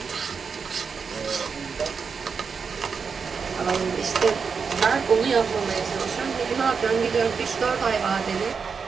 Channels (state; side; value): quieter; left; 5.7 dB